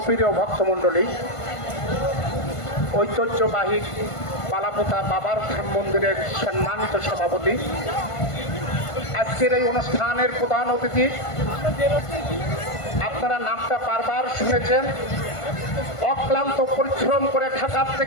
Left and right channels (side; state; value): right; late; 1.5 ms